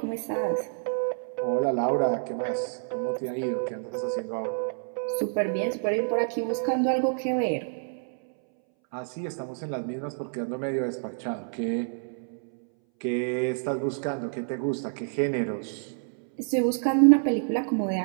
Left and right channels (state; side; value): silent; left; 59 dB below the other